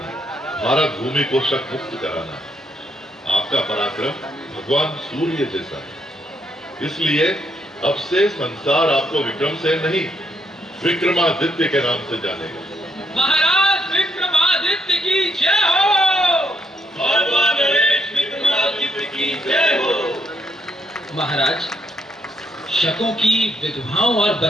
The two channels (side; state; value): both; normal; correlation 0.75